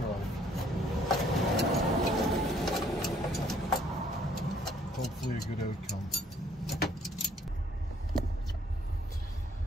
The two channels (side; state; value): both; normal; correlation 0.62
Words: Hopefully a good outcome.